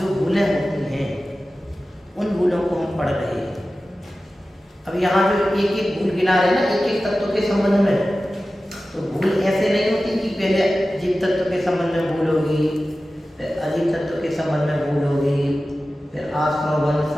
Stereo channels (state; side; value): normal; both; correlation 0.95